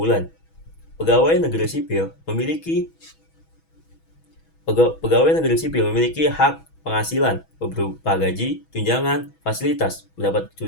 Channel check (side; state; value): right; late; 6.2 ms